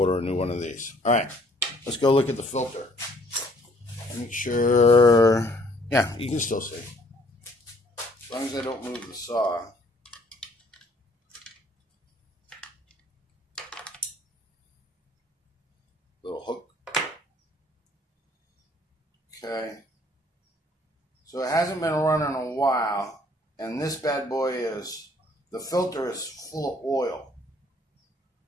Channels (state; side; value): normal; both; correlation 0.61